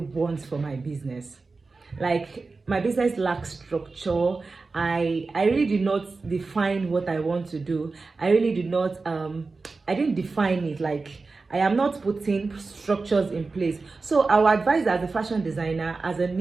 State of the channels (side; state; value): left; quieter; 4.0 dB